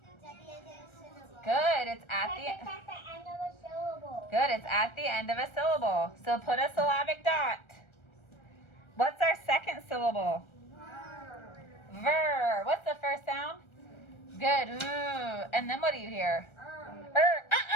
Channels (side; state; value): right; late; 1.3 ms